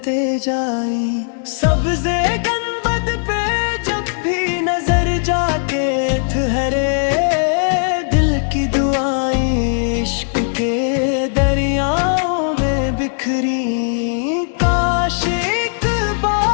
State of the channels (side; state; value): right; silent; digital silence